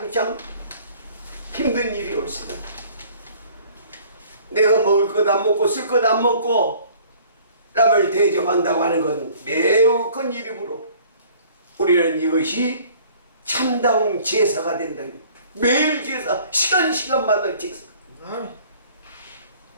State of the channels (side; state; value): both; inverted; correlation -0.53